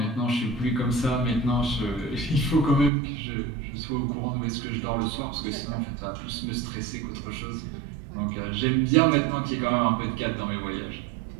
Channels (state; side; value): drops out; left; at 2.9 s